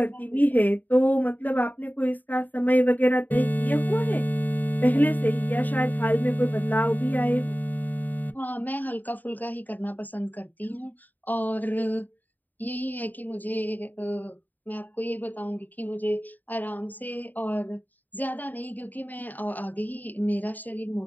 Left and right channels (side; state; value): right; late; 0.085 ms